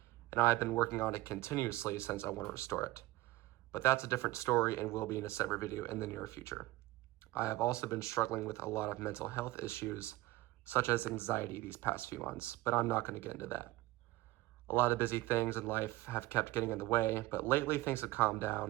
and I've been working on it continuously since I want to restore it. But that's a different story and will be in a separate video in the near future. I have also been struggling with a lot of mental health issues, such as anxiety these past few months, but I'm not going to get into that. A lot of busy things in life have kept getting in the way, but lately things have calmed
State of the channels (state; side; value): quieter; left; 18.4 dB